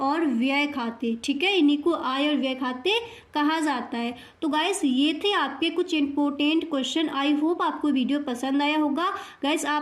व्यय खाते, ठीक है। इन्हीं को आय और व्यय खाते कहा जाता है। तो गाइस ये थे आपके कुछ इंपॉर्टेंट क्वेश्चन। आई होप आपको वीडियो पसंद आया होगा। गाइस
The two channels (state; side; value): identical; both; correlation 1.00